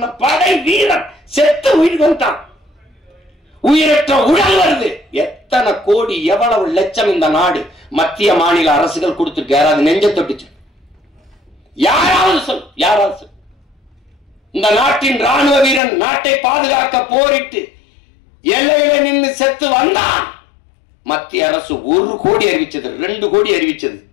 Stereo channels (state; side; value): drops out; right; at 15.8 s